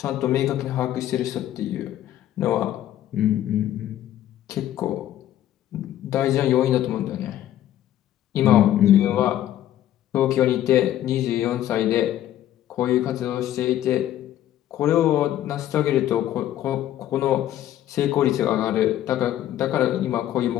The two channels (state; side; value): quieter; right; 12.3 dB